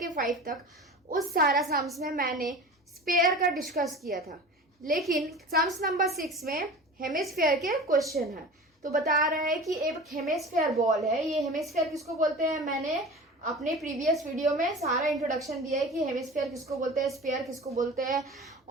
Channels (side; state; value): both; normal; correlation 0.35